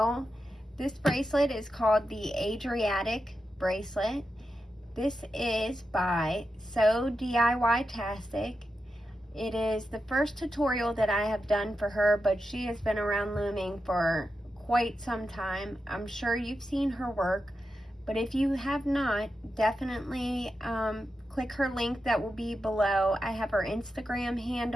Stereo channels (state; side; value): normal; both; correlation 0.89